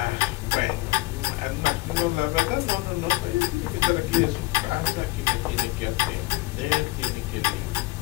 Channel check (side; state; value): right; quieter; 21.0 dB